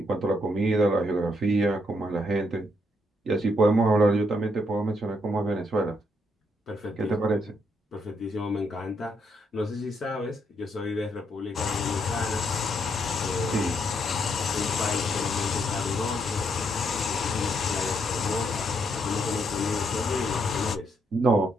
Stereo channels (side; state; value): both; normal; correlation 0.75